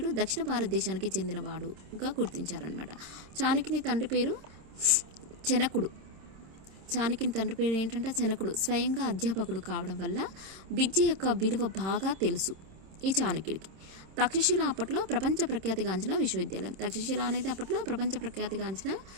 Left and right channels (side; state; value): left; late; 26 ms